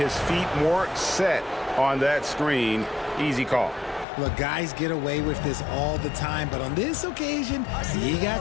feet more set on that screen. Easy call. Look, guys get away with this all the time, but on this occasion, he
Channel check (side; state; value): right; drops out; at 4.0 s